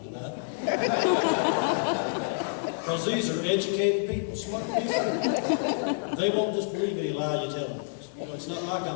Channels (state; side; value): silent; right; digital silence